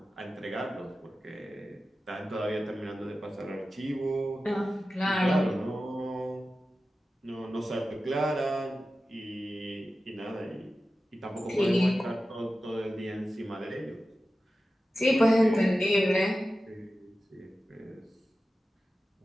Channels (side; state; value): both; normal; correlation 0.93